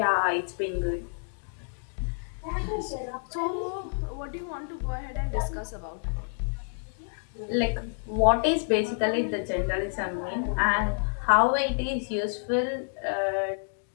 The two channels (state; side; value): silent; right; digital silence